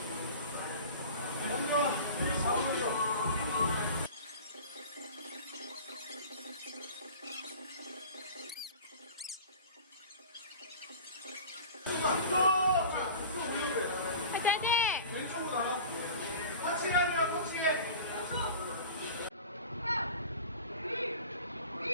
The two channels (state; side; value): inverted; both; correlation -0.38